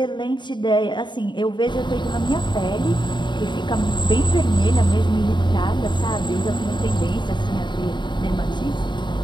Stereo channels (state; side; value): late; right; 0.22 ms